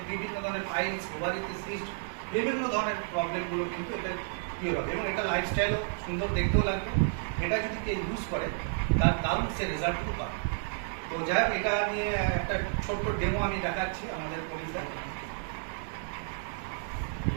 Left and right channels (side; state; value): left; silent; digital silence